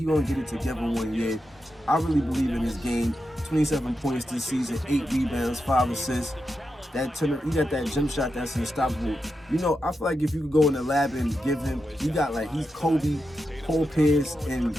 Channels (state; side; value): normal; both; correlation 0.88